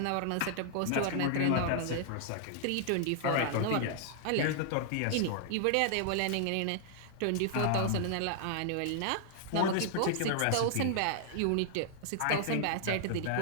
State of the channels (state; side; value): different; both; correlation -0.01